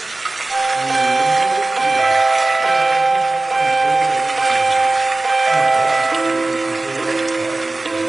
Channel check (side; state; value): left; quieter; 3.1 dB